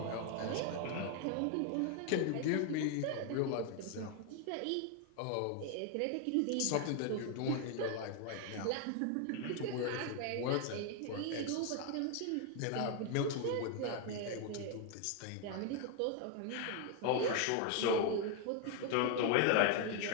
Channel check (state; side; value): different; both; correlation 0.01